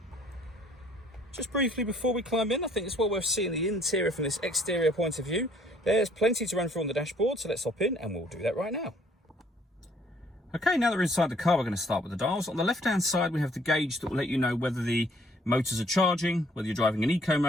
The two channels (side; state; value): both; normal; correlation 0.61